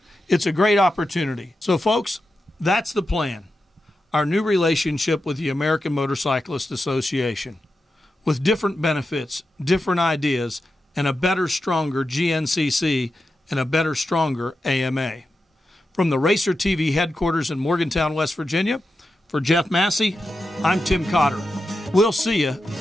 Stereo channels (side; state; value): both; normal; correlation 0.89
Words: It's a great opportunity. So, folks, that's the plan. Our new relationship with the American Motorcyclist Association, with different benefits, different ideas, and a better, stronger GNCC and a better, stronger AMA. From the RacerTV headquarters in Morgantown, West Virginia, for Jeff Massey, I'm Tim Cotter. We'll see you